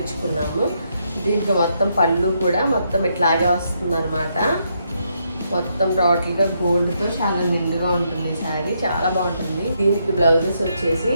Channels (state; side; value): inverted; both; correlation -0.77